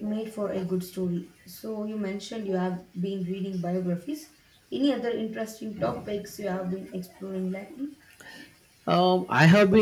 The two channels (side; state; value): both; identical; correlation 1.00